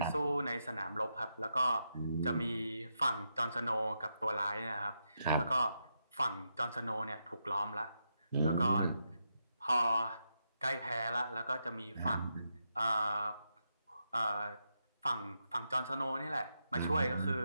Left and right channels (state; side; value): inverted; both; correlation -0.83